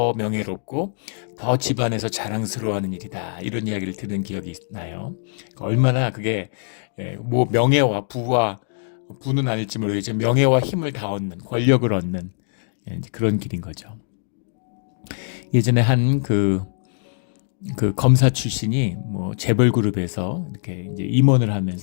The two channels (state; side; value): silent; right; digital silence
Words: 명예롭고 더 집안에서 자랑스러워하는 일이다. 이런 이야기를 들은 기억이 나요. 얼마나 그게 뭐 명예와 부는 아닐지 모르겠지만 명예와 힘을 다 얻는, 권력을 얻는 그런 길인 거죠. 예전에 한 그 검사 출신이 뭐 재벌 그룹에서 이렇게 이제 임원을